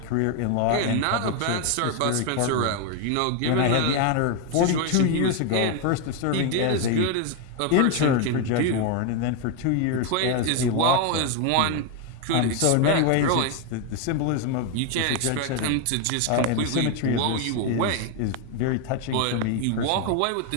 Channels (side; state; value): both; different; correlation 0.01